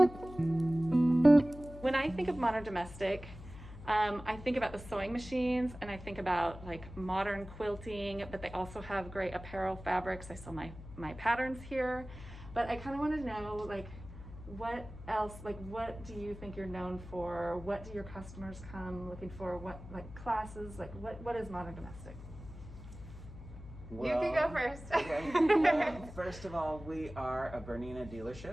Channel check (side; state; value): left; noise; hum, 14 dB below the sound